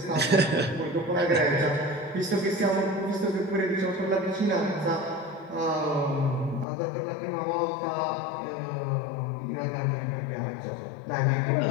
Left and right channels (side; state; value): right; drops out; at 6.7 s